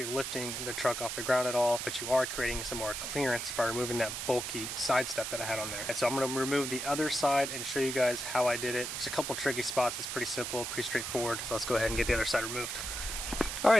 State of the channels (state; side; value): noise; right; hiss, 4 dB below the sound